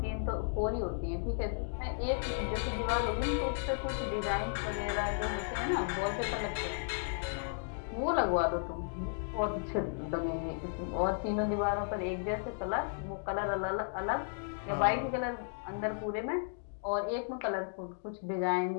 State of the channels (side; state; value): right; silent; digital silence